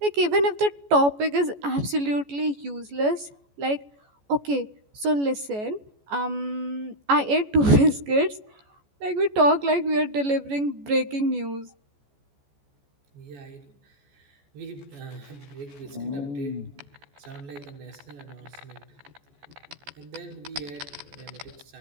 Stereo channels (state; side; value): late; left; 14 ms